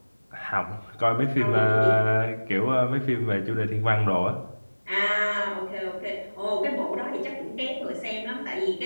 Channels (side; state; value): both; inverted; correlation -1.00